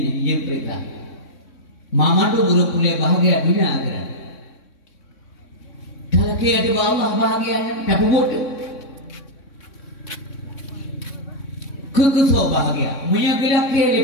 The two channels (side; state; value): right; late; 3.6 ms